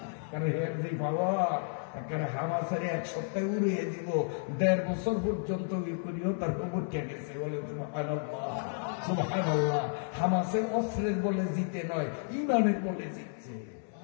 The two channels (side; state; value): right; silent; 56 dB below the other